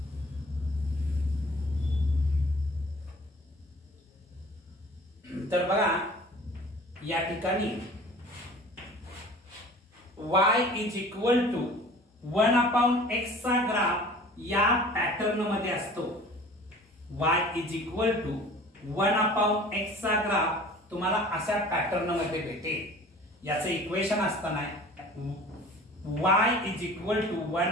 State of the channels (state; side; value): normal; both; correlation 0.45